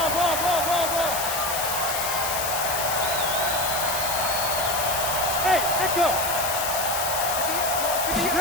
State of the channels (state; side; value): noise; left; hiss, 2 dB below the sound